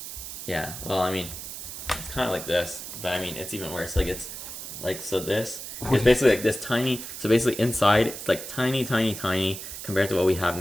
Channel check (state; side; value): noise; right; hiss, 9 dB below the sound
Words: Yeah. Well, I mean, it's kind of like this, but I mean, it's even worse. Like it's like so. This is basically like this tiny. So basically, inside it's like tiny, tiny, tiny compared to what we have